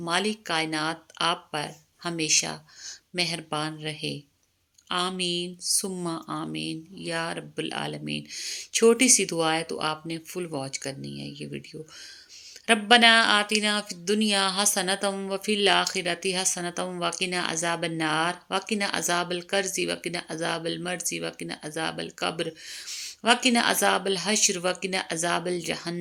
کائنات آپ پر ہمیشہ مہربان رہے، آمین ثم آمین یا رب العالمین۔ چھوٹی سی دعا ہے تو آپ نے فل واچ کرنی ہے یہ ویڈیو۔ ربنا آتنا فی الدنیا حسنۃ وفی الآخرۃ حسنۃ وقنا عذاب النار وقنا عذاب القرض وقنا عذاب المرض وقنا عذاب القبر وقنا عذاب الحشر وقنا عذاب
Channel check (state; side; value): identical; both; correlation 1.00